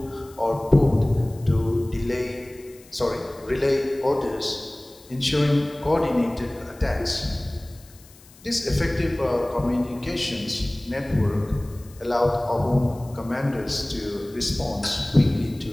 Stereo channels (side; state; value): left; noise; hiss, 25 dB below the sound